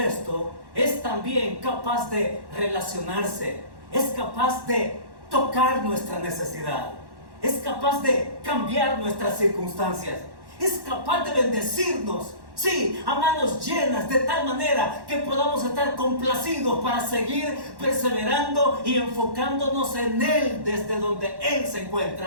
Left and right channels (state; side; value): late; left; 1.1 ms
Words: es también capaz de relacionarse, es capaz de tocar nuestra necesidad, es capaz de cambiar nuestras circunstancias, es capaz de bendecirnos, sí, a manos llenas, de tal manera que podamos estar complacidos para seguir perseverando y enfocándonos en Él desde donde Él se